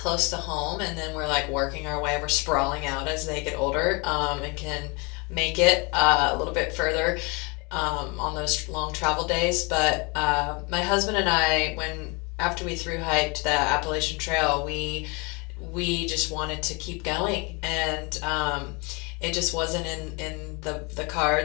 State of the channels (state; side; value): quieter; right; 29.2 dB